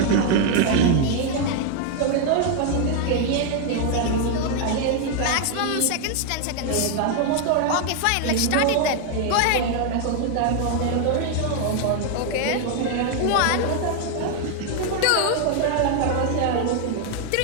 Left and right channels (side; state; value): both; different; correlation 0.00